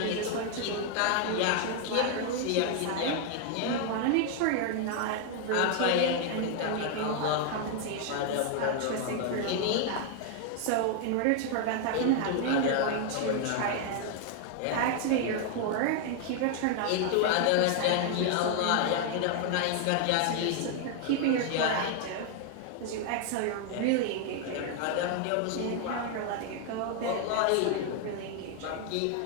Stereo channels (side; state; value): both; different; correlation 0.00